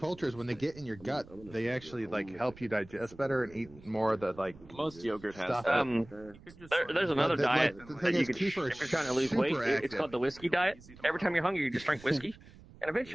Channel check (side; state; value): right; noise; rumble, 21 dB below the sound